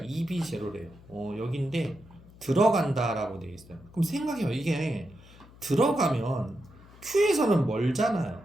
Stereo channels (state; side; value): noise; left; hum, 22 dB below the sound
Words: 여기인데 들어간다라고 되어 있어요. 그럼 생각해요. 이게 들어가면 Q에서는 멀잖아요.